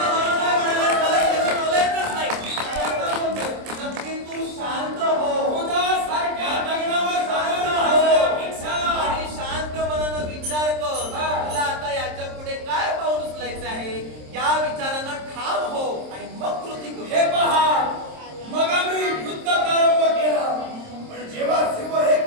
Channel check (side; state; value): left; late; 26 ms